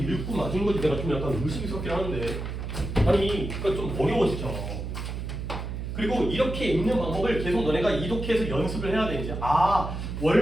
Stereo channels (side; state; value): right; noise; hum, 5 dB below the sound